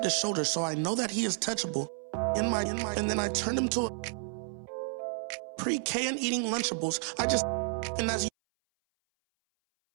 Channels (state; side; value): silent; left; 57 dB below the other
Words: his shoulder so I know that he is touchable. And then I turned him to a pre-K and eating Lunchables. And as